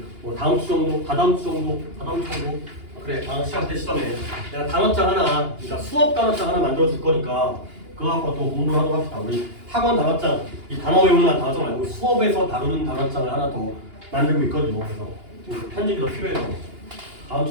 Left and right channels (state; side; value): late; left; 2.8 ms